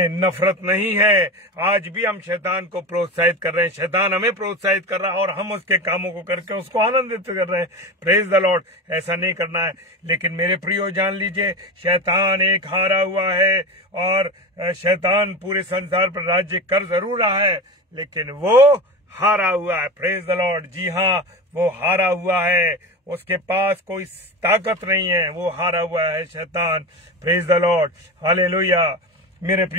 नफरत नहीं है। आज भी हम शैतान को प्रोत्साहित कर रहे हैं, शैतान हमें प्रोत्साहित कर रहा है और हम उसके कामों को करके उसको आनंदित कर रहे हैं। Praise the Lord. ऐसा नहीं करना है। लेकिन मेरे प्रियो जान लीजिए, शैतान एक हारा हुआ है और शैतान पूरे संसार पर राज्य कर जरूर रहा है, लेकिन वो हारा हुआ है। Praise the Lord. जी हाँ, वो हारा हुआ है, उसके पास कोई ताकत नहीं है, वो हारा हुआ है शैतान। Praise the Lord. हालेलुया मेरे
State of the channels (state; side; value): normal; both; correlation 0.25